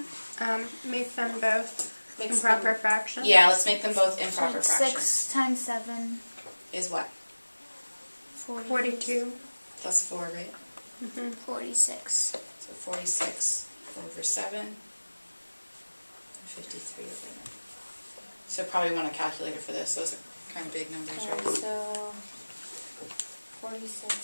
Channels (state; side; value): inverted; both; correlation -1.00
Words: Make them both Mixed Improper fraction. Yeah, let's make them both improper So fractions. 6 times 7, Is what? 42. Plus 4, right? 46. So 46 over 7. And 53 over 9. So probably want a calculator for this. Those are kind of big numbers, right? So